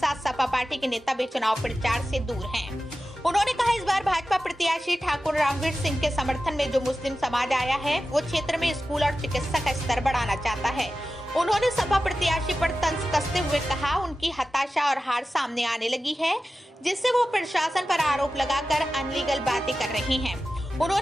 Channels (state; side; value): normal; both; correlation 0.94